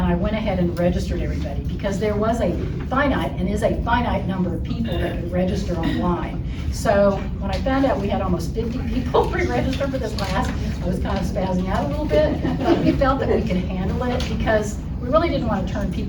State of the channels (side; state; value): both; identical; correlation 1.00